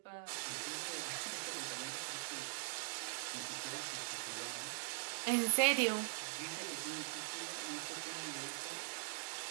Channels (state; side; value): silent; left; digital silence